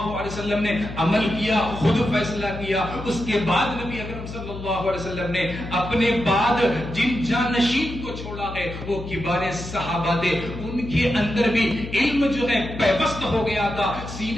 علیہ وسلم نے عمل کیا، خود فیصلہ کیا. اس کے بعد نبی اکرم صلی اللہ علیہ وسلم نے اپنے بعد جن جانشین کو چھوڑا ہے وہ کبار صحابہ تھے. ان کے اندر بھی علم جو ہے پیوست ہو گیا تھا،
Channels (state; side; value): noise; left; hum, 10 dB below the sound